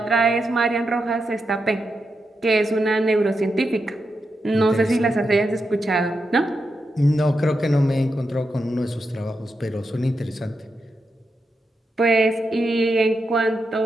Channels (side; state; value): both; normal; correlation 0.86